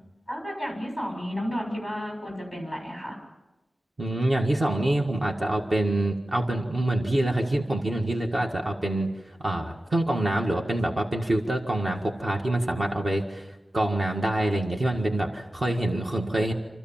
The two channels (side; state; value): both; normal; correlation 0.93